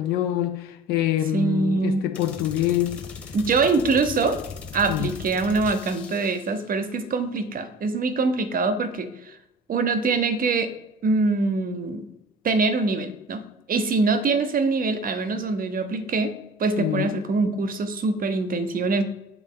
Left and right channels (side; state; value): both; normal; correlation 0.41